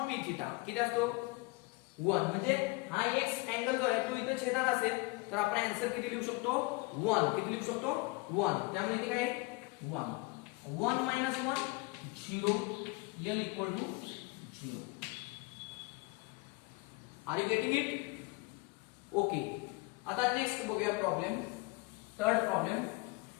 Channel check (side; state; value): right; quieter; 25.5 dB